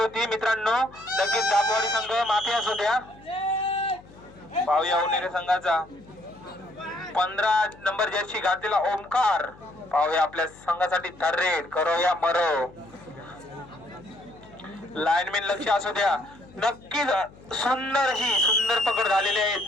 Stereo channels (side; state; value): left; noise; hum, 23 dB below the sound